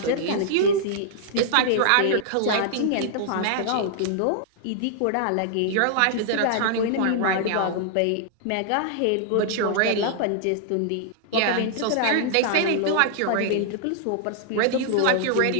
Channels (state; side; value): different; both; correlation -0.01